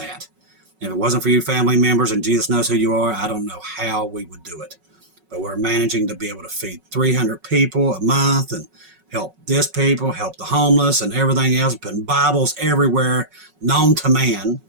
If it wasn't for you family members and Jesus knows who you are, I don't know how we would do it. But we're managing to be able to feed 300 people a month and help this people, help the homeless and everything else, putting Bibles everywhere known to man.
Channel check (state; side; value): late; left; 5.4 ms